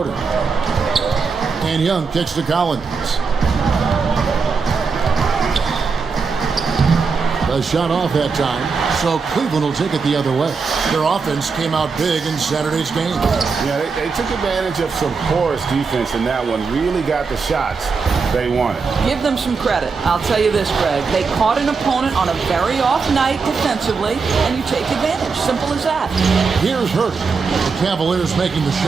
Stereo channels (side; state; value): left; quieter; 5.0 dB